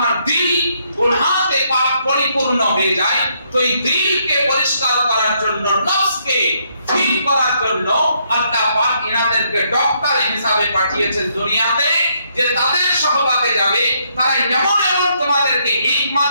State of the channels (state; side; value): inverted; both; correlation -0.73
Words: দিল গুনাহতে পাক পরিপূর্ণ হয়ে যায় তো এই দিলকে পরিষ্কার করার জন্য, নফসকে ঠিক করার জন্য আল্লাহ পাক ইনাদেরকে ডক্টর হিসেবে পাঠিয়েছেন দুনিয়াতে, যে তাদের সহবাতে যাবে, তারা এমন এমন তোমাদেরকে হিকমত